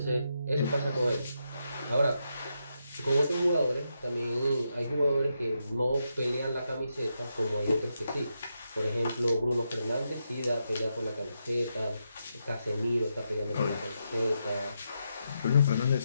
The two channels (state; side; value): inverted; both; correlation -0.84